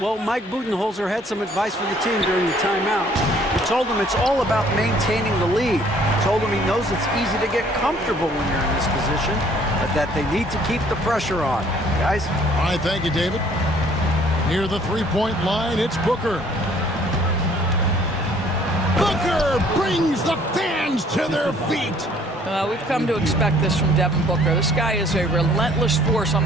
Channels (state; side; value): normal; both; correlation 0.59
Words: Mike Budenholzer had some advice for the team during the timeout. He told them it's all about maintaining the lead. He told them he knows it's easy to get comfortable when you're in this position, but that they need to keep the pressure on. Guys? All right, thank you, David. Near the three-point line, it's Booker. Booker brings the fans to their feet. We've come to expect this from Devin Booker. This guy is a relentless force on